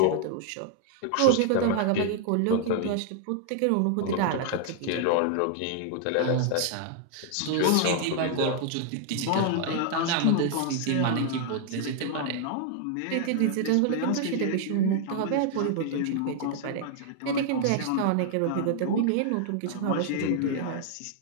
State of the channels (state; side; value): different; both; correlation 0.00